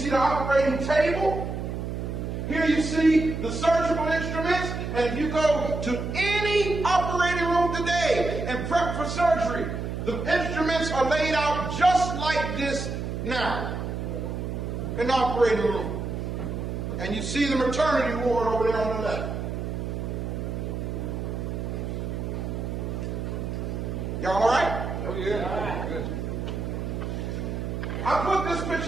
the operating table. Here you see the surgical instruments. And if you go to any operating room today and prep for surgery, the instruments are laid out just like this now in the operating room. And you see the maternity ward over there on the left. Y'all all right? Oh, yeah. Good. I put this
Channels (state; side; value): noise; right; hum, 4 dB below the sound